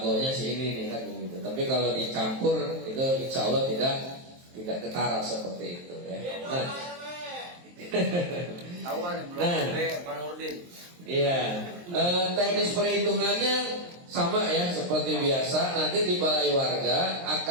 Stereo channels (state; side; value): late; left; 23 ms